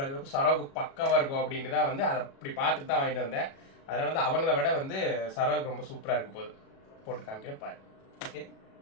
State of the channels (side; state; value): right; late; 37 ms